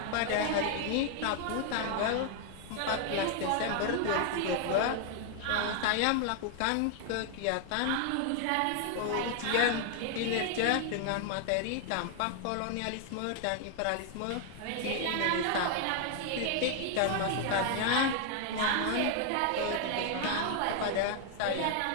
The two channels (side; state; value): both; different; correlation 0.00